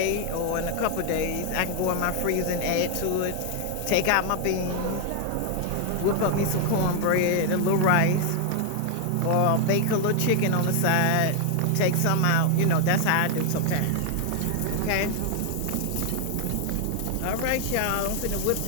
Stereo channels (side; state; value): both; different; correlation 0.00